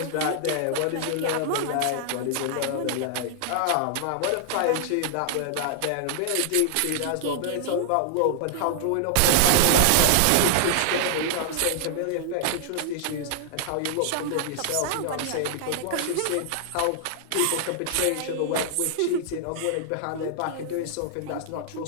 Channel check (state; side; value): different; both; correlation -0.01